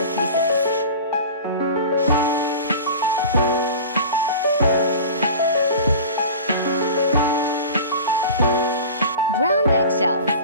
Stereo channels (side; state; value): both; inverted; correlation -0.36